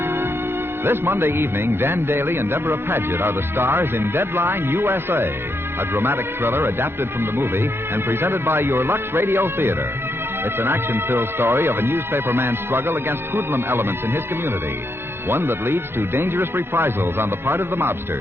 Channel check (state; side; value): late; left; 0.11 ms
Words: This Monday evening, Dan Daly and Deborah Paget are the stars in Deadline USA, a dramatic thriller adapted from the movie and presented by your Lux Radio Theater. It's an action-filled story of a newspaper man's struggle against hoodlum elements in his community, one that leads to dangerous reprisals on the part of the